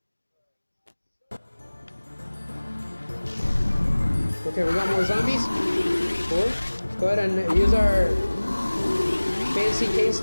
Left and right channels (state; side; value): inverted; both; correlation -1.00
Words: Okay, we got more zombies. Cool. Let's go ahead and use our fancy cane